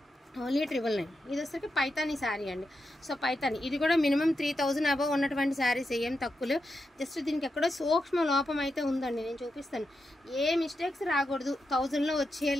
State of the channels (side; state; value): both; normal; correlation 0.87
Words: ఓన్లీ 999. ఇది వచ్చరికి పైతానీ శారీ అండి. సో పైతానీ ఇది కూడా మినిమం 3,000 అబవ్ ఉన్నటువంటి శారీస్, ఏం తక్కువలు. జస్ట్ దీనికి ఎక్కడో సూక్ష్మ లోపం అయితే ఉందండి, నేను చూపిస్తాను. ఏ మిస్టేక్స్ రాకూడదు, 1000లో